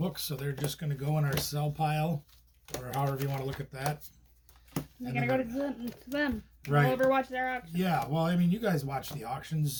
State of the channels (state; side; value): identical; both; correlation 1.00